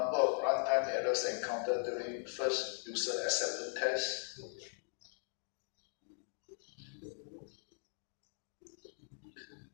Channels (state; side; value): silent; right; 51 dB below the other